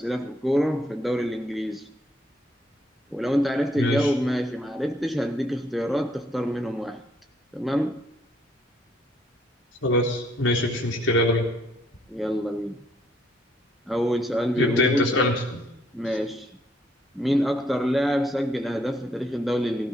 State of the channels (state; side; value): normal; both; correlation 0.69